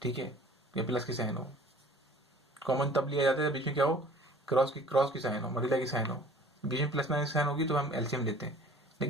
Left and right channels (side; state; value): both; normal; correlation 0.49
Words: ठीक है, या प्लस की साइन हो। कॉमन तब लिया जाता है बीच में क्या हो, क्रॉस की साइन हो, मल्टीप्लाई की साइन हो, बीच में प्लस माइनस की साइन होगी तो हम एलसीएम लेते हैं।